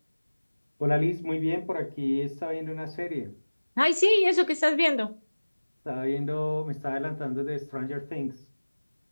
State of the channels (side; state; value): both; inverted; correlation -1.00